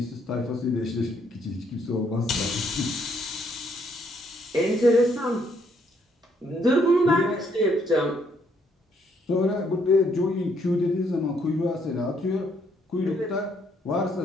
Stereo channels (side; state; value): both; normal; correlation 0.70